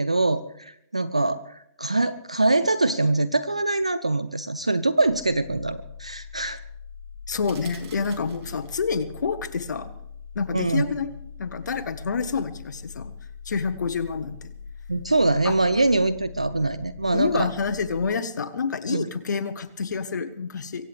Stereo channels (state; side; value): inverted; both; correlation -0.79